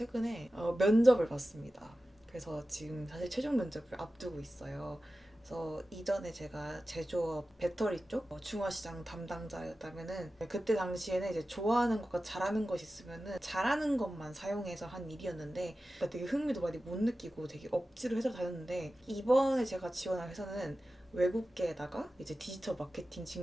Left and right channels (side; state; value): both; normal; correlation 0.94